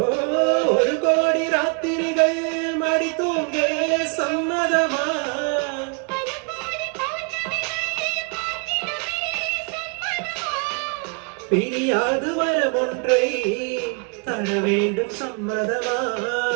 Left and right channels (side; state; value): left; quieter; 37.7 dB